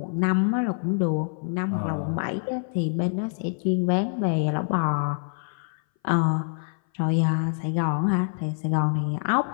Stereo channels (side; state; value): right; silent; 58 dB below the other